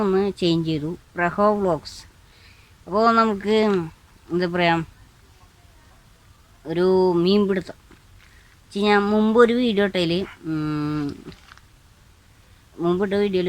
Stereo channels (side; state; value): both; identical; correlation 1.00